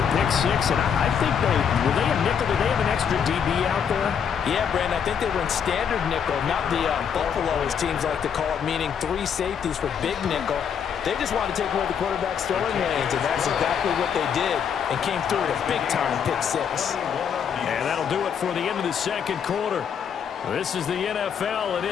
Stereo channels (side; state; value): right; quieter; 7.6 dB